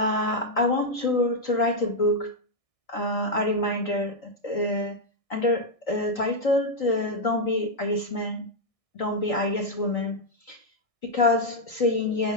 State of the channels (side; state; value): right; late; 1.6 ms